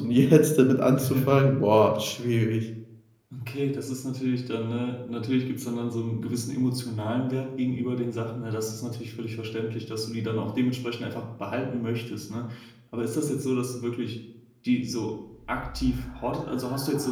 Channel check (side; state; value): both; identical; correlation 1.00